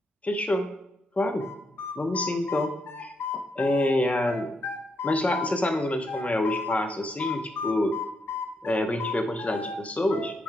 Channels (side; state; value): both; normal; correlation 0.79